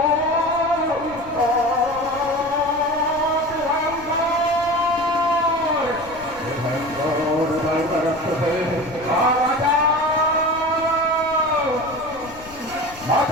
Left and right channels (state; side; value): noise; left; rumble, 20 dB below the sound